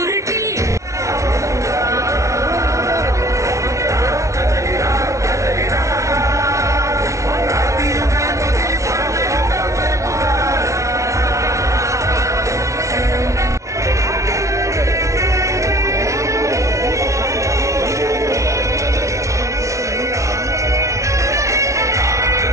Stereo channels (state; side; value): late; left; 0.14 ms